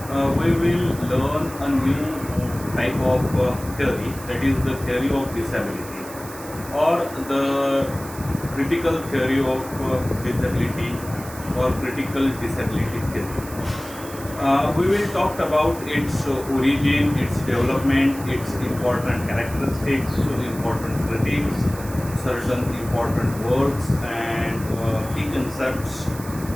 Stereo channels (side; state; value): right; noise; hiss, 15 dB below the sound